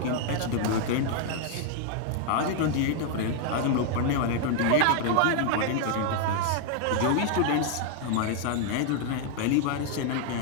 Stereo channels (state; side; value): different; both; correlation 0.00